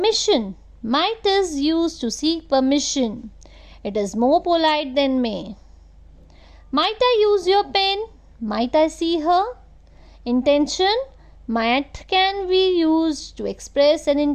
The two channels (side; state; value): both; identical; correlation 1.00